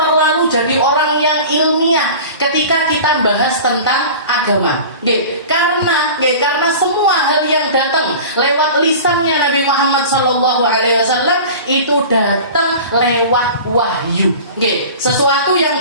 jadi orang yang ilmiah ketika kita bahas tentang agama. Karena semua hal yang datang lewat lisannya Nabi Muhammad SAW itu datang lewat wahyu. Sesuatu yang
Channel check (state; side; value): inverted; both; correlation -0.37